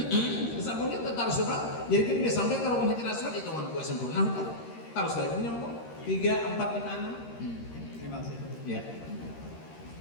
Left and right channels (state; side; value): late; right; 13 ms